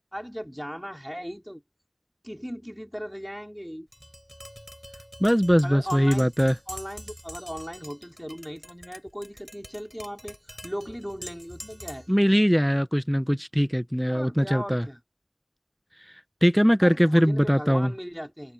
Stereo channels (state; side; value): identical; both; correlation 1.00